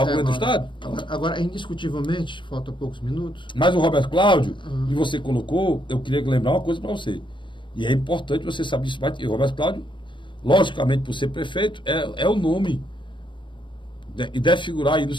governo do Estado? Agora, indiscutivelmente, falta poucos minutos. Mas o Roberto Cláudio, e você colocou, eu queria lembrar uma coisa para você. E é importante você saber isso. O Roberto Cláudio, logicamente, por ser prefeito, é o nome. E deve figurar aí no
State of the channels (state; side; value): late; right; 0.23 ms